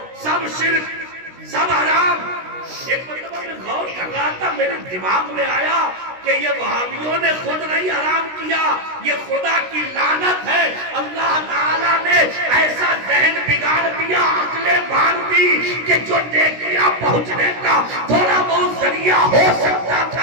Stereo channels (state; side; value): late; left; 16 ms